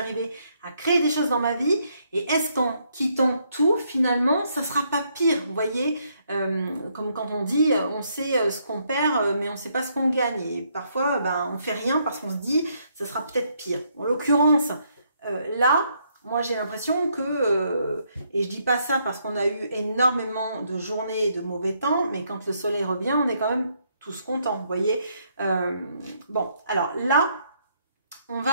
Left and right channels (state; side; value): inverted; both; correlation -0.73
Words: à créer des choses dans ma vie. Et est-ce qu'en quittant tout, finalement, ça ne sera pas pire? Vous voyez, comme quand on dit, on sait ce qu'on perd, mais on ne sait pas ce qu'on gagne. Et parfois, on ne fait rien parce qu'on se dit, ça sera peut-être pire. En l'occurrence, là, moi j'ai l'impression que, et je dis pas ça parce qu'on a eu énormément de journées de mauvais temps, mais quand le soleil revient, on est quand même tous contents, vous voyez. Bon, alors là, on